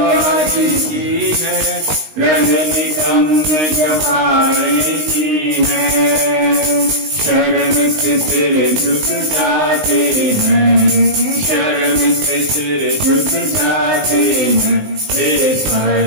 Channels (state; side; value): late; left; 19 ms